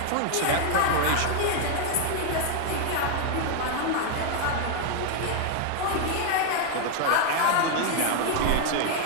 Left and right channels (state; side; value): different; both; correlation 0.00